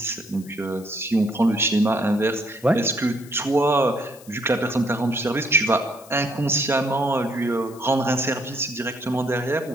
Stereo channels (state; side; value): noise; left; hiss, 22 dB below the sound